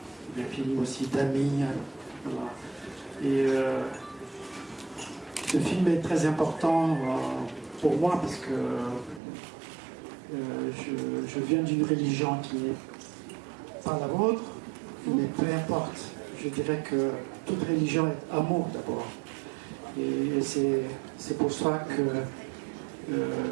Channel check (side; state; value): left; drops out; at 9.2 s